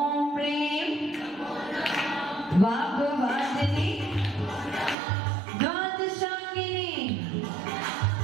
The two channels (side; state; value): left; drops out; at 5.0 s